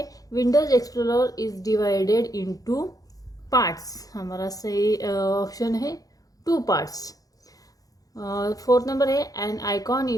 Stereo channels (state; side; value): late; right; 0.17 ms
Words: Windows Explorer is divided into parts. हमारा सही ऑप्शन है 2 पार्ट्स। फोर्थ नंबर है an icon